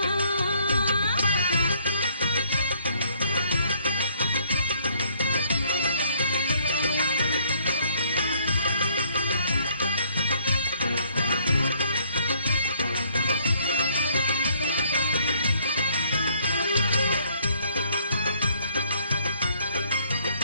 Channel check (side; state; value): both; inverted; correlation -0.64